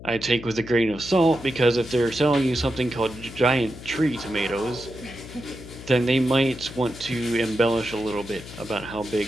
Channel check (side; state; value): left; noise; hum, 14 dB below the sound